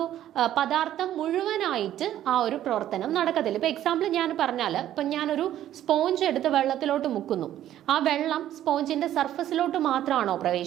പദാർത്ഥം മുഴുവനായിട്ട് ആ ഒരു പ്രവർത്തനം നടക്കത്തില്ല. ഇപ്പൊ എക്സാമ്പിൾ ഞാൻ പറഞ്ഞാൽ, ഇപ്പൊ ഞാനൊരു സ്പോഞ്ച് എടുത്ത് വെള്ളത്തിലോട്ട് മുക്കുന്നു, ആ വെള്ളം സ്പോഞ്ചിന്റെ സർഫസിലോട്ട് മാത്രമാണോ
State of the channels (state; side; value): quieter; left; 12.1 dB